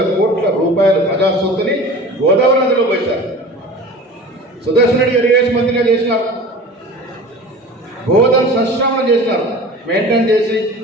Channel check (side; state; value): both; normal; correlation 0.39